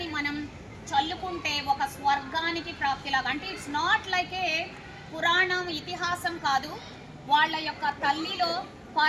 మనం చల్లుకుంటే ఒక స్వర్గానికి ప్రాప్తిలాగా. అంటే ఇట్స్ నాట్ లైక్ ఏ పురాణం, ఇతిహాసం కాదు. వాళ్ళ యొక్క తల్లిలో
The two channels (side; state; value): both; identical; correlation 1.00